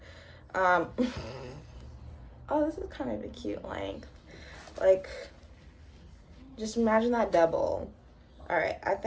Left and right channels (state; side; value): identical; both; correlation 1.00